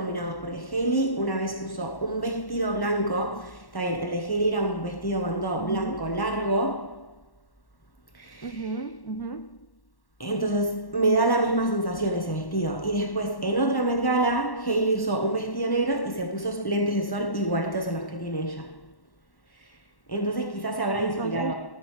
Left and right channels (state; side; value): late; right; 1.1 ms